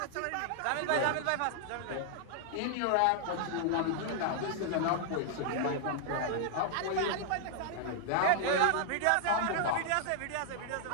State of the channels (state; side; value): different; both; correlation -0.01